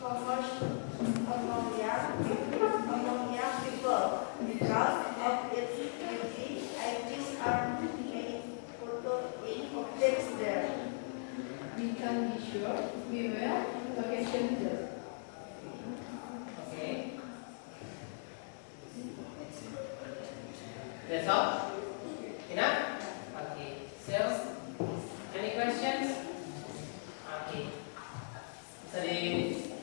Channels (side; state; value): right; silent; digital silence